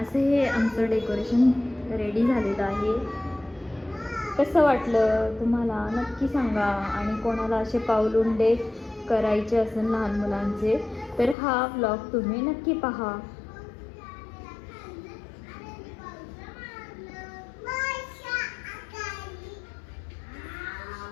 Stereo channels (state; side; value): drops out; right; at 11.4 s